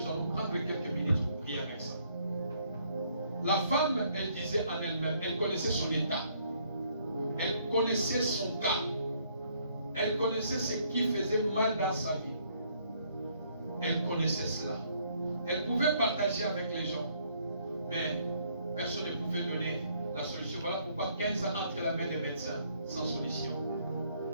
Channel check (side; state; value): both; inverted; correlation -0.67